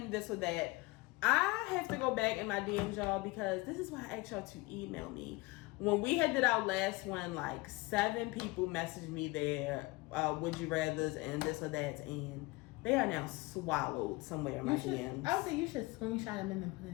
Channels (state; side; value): quieter; right; 22.8 dB